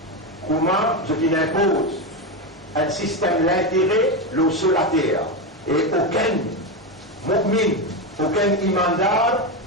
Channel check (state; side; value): normal; both; correlation 0.13